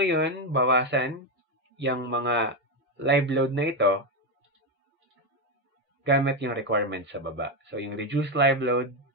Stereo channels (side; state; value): both; normal; correlation 0.08